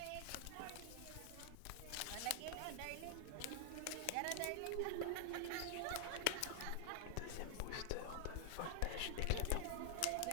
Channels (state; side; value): different; both; correlation 0.00